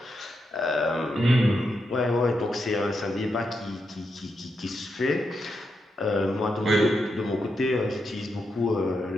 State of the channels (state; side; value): normal; both; correlation 0.84